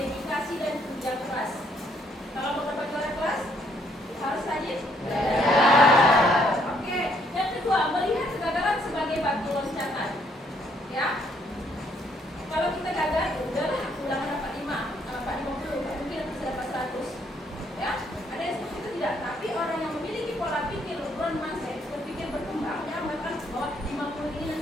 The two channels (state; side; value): normal; both; correlation 0.69